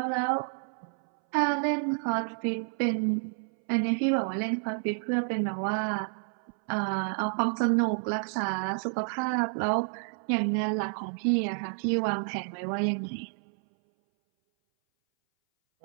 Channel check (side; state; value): left; silent; 58 dB below the other